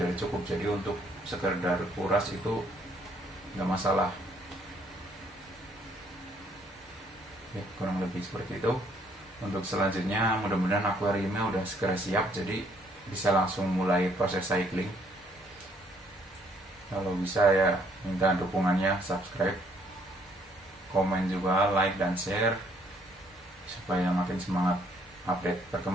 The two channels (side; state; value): both; normal; correlation 0.66